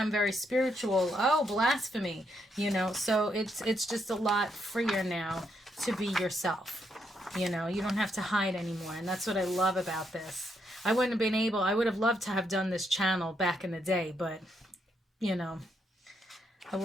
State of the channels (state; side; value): normal; both; correlation 0.77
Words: very spiritual. Oh, blasphemy. You know, so it's just a lot freer now to be yourself. You know, you don't have to hide anymore. And that's what I love about this. I would have loved to have done this channel back in the day, but, you know, I